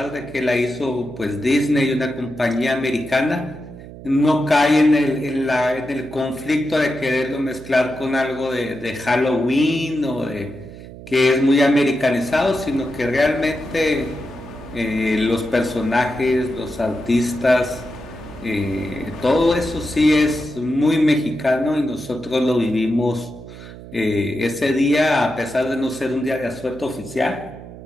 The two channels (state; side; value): noise; right; hum, 15 dB below the sound